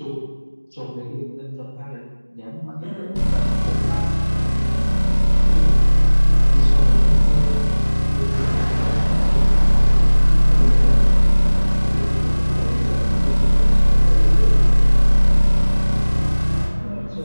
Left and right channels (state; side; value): inverted; both; correlation -1.00